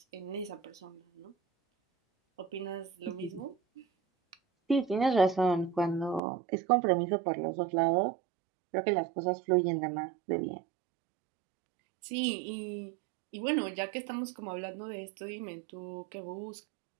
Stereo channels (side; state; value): left; drops out; at 6.2 s